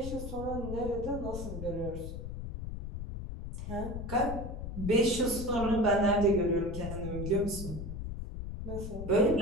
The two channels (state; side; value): noise; left; rumble, 6 dB below the sound